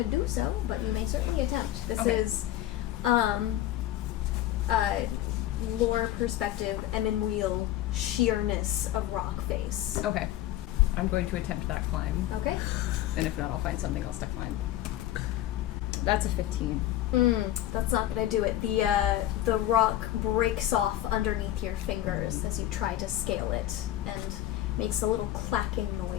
do so, but you may certainly attempt. This Okay. is, lore perspective and in real sheerness of rock face. Okay. I'm going to attempt that climb, Okay. and if not, I'll find something else to climb. That's a 15. That's not gonna do it. The rock breaks off underneath your fingers as you try to scale it and makes a little clacking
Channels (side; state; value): right; quieter; 13.6 dB